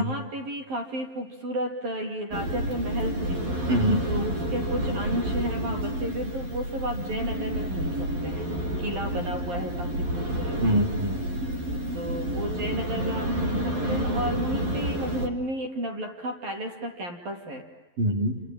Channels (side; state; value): left; late; 11 ms